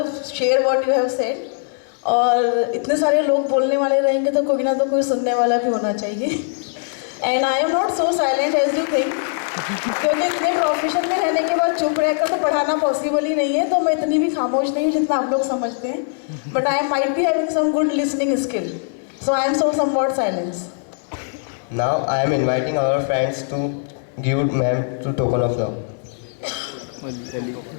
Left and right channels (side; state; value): right; silent; digital silence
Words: share what you have said. और इतने सारे लोग बोलने वाले रहेंगे तो कोई ना तो कोई सुनने वाला भी होना चाहिए। And I am not so silent as you think, क्योंकि इतने प्रोफेशन में रहने के बाद चुप रहकर तो पढ़ाना पॉसिबल ही नहीं है, तो मैं इतनी भी खामोश नहीं हूँ जितना आप लोग समझते हैं। But I might be having some good listening skill, so I am so somewhat silence. Now I am inviting our friends to give ma'am to token of love.